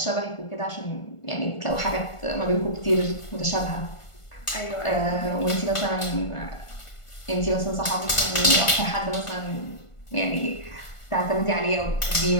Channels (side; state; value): right; late; 1.5 ms